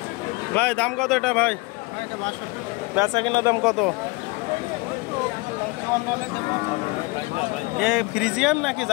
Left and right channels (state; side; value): quieter; right; 25.3 dB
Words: ভাই দাম কত এটা ভাই? বেচা কিনা দাম কত? এ ফ্রিজিয়ান নাকি